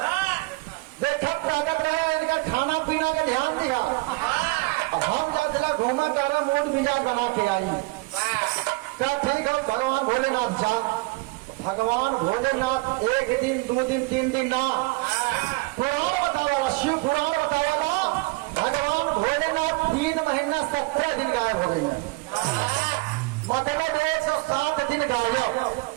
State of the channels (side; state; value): left; quieter; 24.3 dB